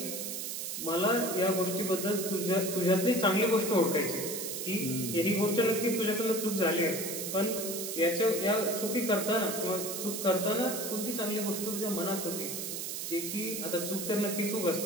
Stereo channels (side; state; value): right; noise; hiss, 5 dB below the sound